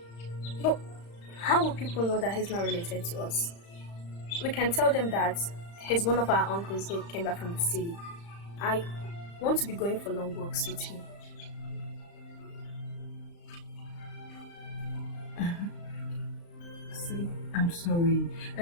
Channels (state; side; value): late; right; 35 ms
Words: But how will people know that he's not related to us? We can tell them that he's one of our uncles who came back from the city. I want to be going for long walks with him. See, I'm sorry.